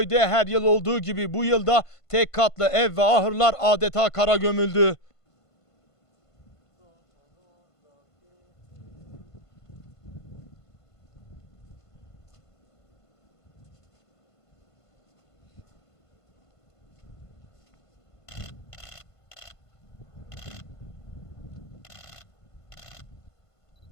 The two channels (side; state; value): right; late; 1.5 ms